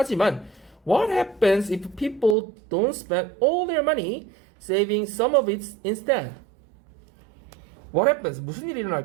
what happens if people don't spend all their money saving some of it instead? What happens? 무슨 일이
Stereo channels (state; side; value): drops out; left; at 2.4 s